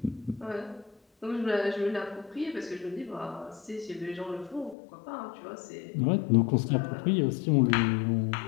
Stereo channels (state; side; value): drops out; right; at 4.8 s